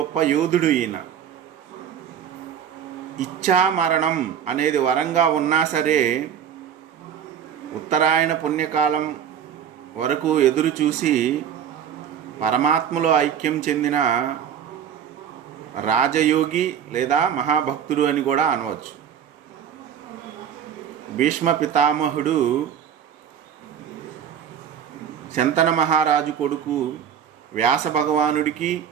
యోధుడు ఈయన. ఇచ్ఛామరణం అనేది వరంగా ఉన్నా సరే ఉత్తరాయణ పుణ్యకాలం వరకు ఎదురు చూసి పరమాత్మలో ఐక్యం చెందిన రాజయోగి లేదా మహాభక్తుడు అని కూడా అనవచ్చు. భీష్మ పితామహుడు శంతన మహారాజు కొడుకు వ్యాస భగవానుడికి,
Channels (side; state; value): left; quieter; 8.7 dB